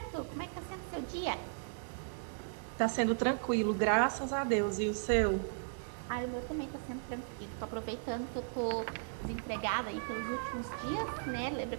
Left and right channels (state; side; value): silent; left; digital silence